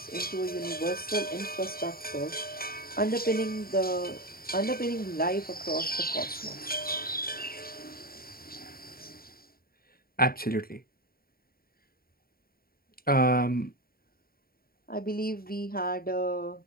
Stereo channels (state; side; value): late; right; 0.43 ms